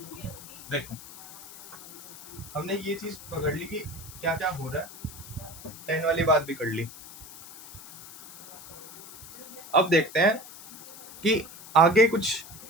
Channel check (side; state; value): left; noise; hiss, 16 dB below the sound